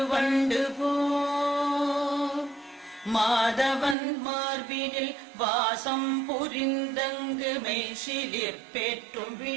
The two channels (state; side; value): drops out; left; at 4.0 s